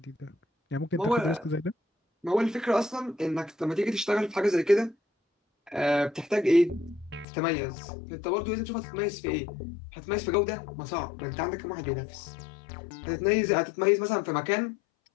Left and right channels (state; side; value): drops out; right; at 7.2 s